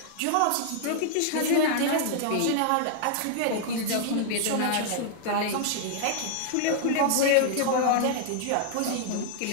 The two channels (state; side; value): different; both; correlation -0.01